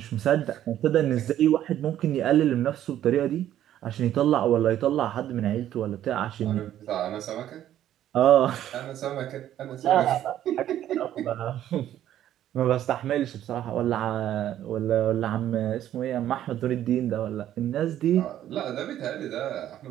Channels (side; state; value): left; quieter; 11.8 dB